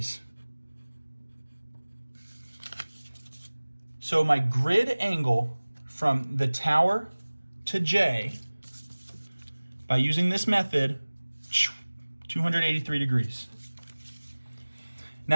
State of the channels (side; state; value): both; inverted; correlation -1.00